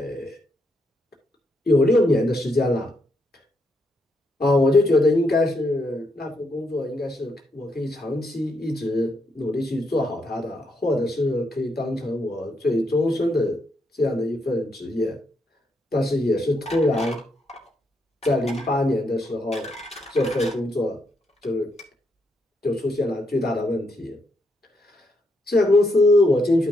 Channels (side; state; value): both; normal; correlation 0.78